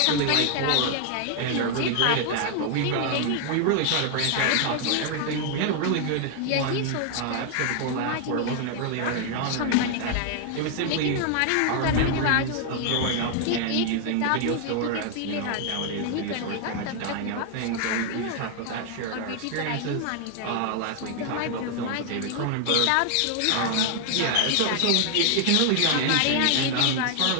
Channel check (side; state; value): both; different; correlation 0.00